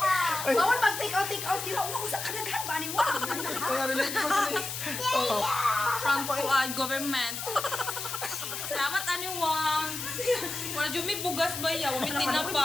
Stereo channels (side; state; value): left; noise; hiss, 5 dB below the sound